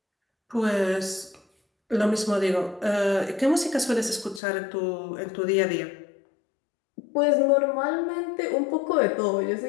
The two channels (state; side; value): drops out; right; at 4.4 s